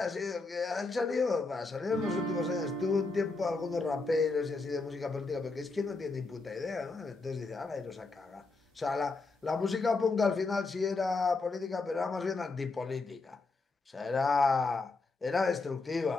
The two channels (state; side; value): quieter; right; 3.7 dB